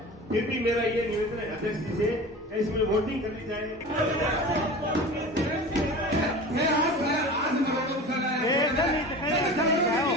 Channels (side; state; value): both; normal; correlation 0.35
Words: फिर भी मेरा ये निवेदन है अध्यक्ष जी से इसमें वोटिंग करनी चाहिए।